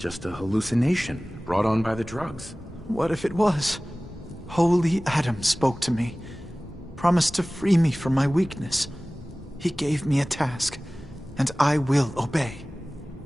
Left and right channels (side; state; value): both; normal; correlation 0.98